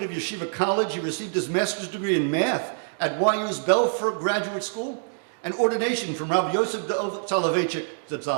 of Yeshiva College, he received his master's degree in math at YU's Belfer Graduate School and ordination from Rabbi Yosef Soloveitchik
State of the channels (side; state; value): left; silent; digital silence